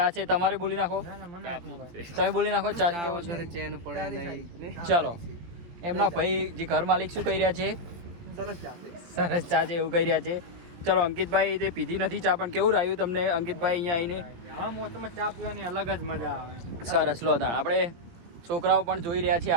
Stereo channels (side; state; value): left; late; 18 ms